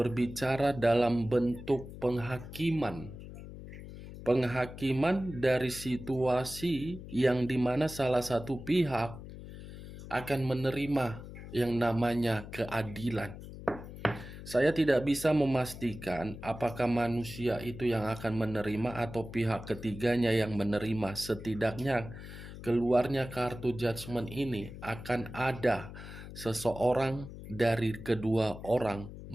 dalam bentuk penghakiman. Penghakiman dari situasi yang dimana salah satu pihak akan menerima yang namanya keadilan. Saya tidak bisa memastikan apakah manusia itu yang akan menerima atau pihak ketiganya yang menerima. Setidaknya keluarnya kartu judgment ini akan ada seseorang dari kedua orang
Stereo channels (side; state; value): left; noise; hum, 13 dB below the sound